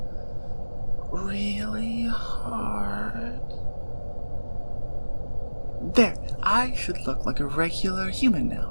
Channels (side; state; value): both; inverted; correlation -1.00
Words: really hard. There, I should look like a regular human